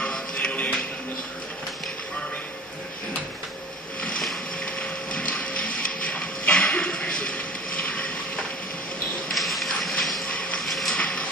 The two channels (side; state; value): both; normal; correlation 0.41